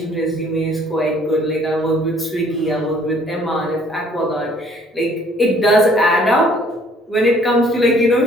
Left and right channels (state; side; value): normal; both; correlation 0.60